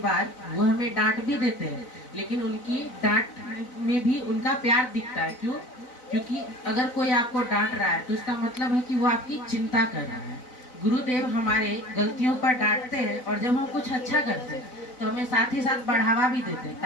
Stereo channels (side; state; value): right; late; 4.0 ms